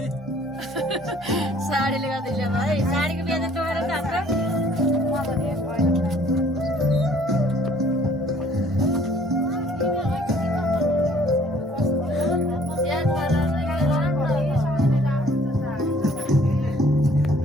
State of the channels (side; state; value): both; normal; correlation 0.58